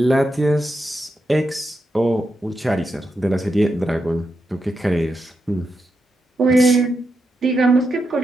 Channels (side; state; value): both; normal; correlation 0.85